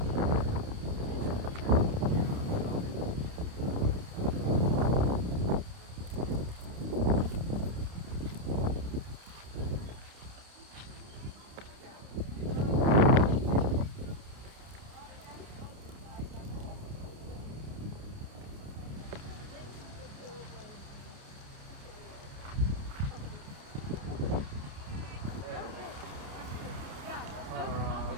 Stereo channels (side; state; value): left; late; 29 ms